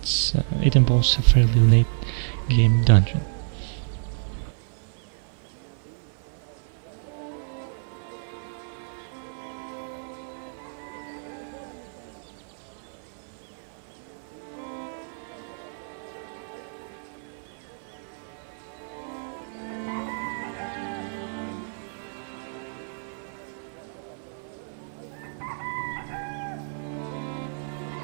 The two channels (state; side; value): silent; left; 59 dB below the other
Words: involves a fairly late game dungeon.